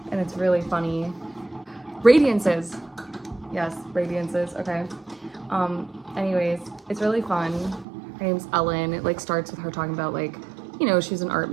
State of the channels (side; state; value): left; drops out; at 7.9 s